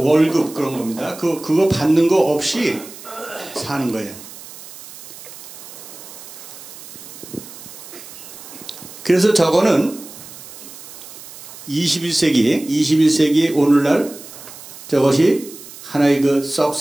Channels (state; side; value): noise; right; hiss, 16 dB below the sound